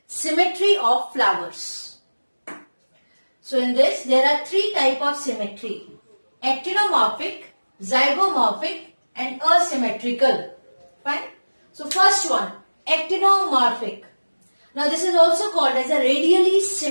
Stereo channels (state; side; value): inverted; both; correlation -1.00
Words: symmetry of flowers. So in this there are three types of symmetry: actinomorphic, zygomorphic and asymmetrical. Fine. So first one, actinomorphic. Now this is also called as a radially